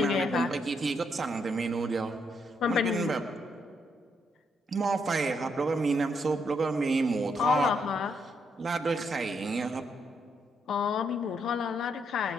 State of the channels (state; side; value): normal; both; correlation 0.76